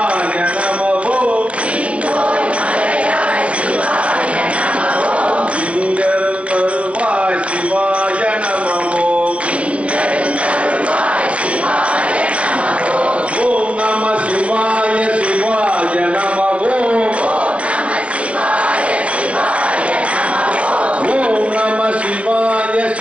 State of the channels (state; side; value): late; left; 0.062 ms